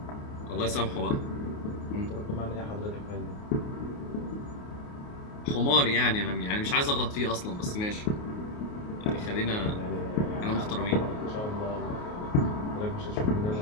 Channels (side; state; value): right; late; 28 ms